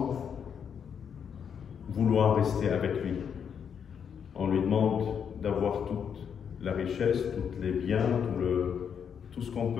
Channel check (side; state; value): right; quieter; 7.5 dB